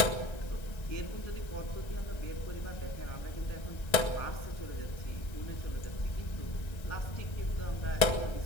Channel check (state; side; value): late; right; 1.3 ms